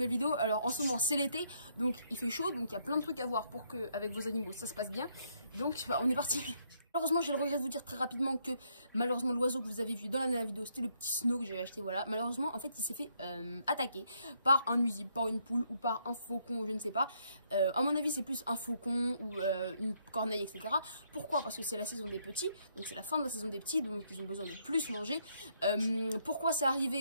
vidéo. Alors en ce moment c'est l'été, donc il fait chaud, donc il y a plein de trucs à voir pour que avec vos animaux ça se passe bien. Donc on est parti. Malheureusement j'ai le regret de vous dire très rapidement que malheureusement l'oiseau que vous avez vu dans la dernière vidéo c'était le petit snow que j'avais acheté, voilà. Malheureusement en fait il s'est fait attaquer par un nuisible, par une poule ou par un faucon, je ne sais pas. À mon avis c'est plus un faucon ou une corneille, etc. Pourquoi? Parce que c'est la saison des petits, donc c'est la fin de la saison des petits, donc ils ont besoin de plus manger. Pourquoi c'est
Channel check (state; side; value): inverted; both; correlation -0.72